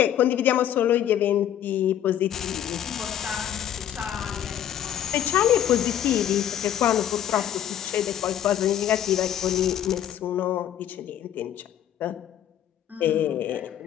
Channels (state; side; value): quieter; right; 10.7 dB